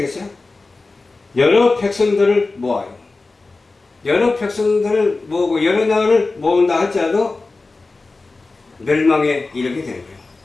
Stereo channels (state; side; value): quieter; right; 3.6 dB